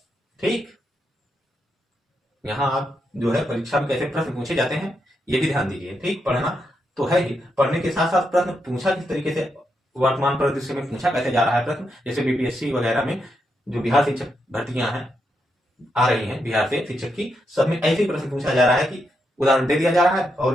ठीक, यहाँ आप जो है परीक्षा में कैसे प्रश्न पूछे जाते हैं ये भी ध्यान दीजिए। ठीक, पढ़ना तो है ही, पढ़ने के साथ साथ प्रश्न पूछा किस तरीके से, वर्तमान परिदृश्य में पूछा कैसे जा रहा है प्रश्न। जैसे बीपीएससी वगैरह में जो बिहार शिक्षक भर्तियां हैं आ रही हैं बिहार से शिक्षक की, सब में ऐसे ही प्रश्न पूछा जा रहा है कि उदाहरण दे दिया जा रहा है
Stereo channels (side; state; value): both; normal; correlation 0.82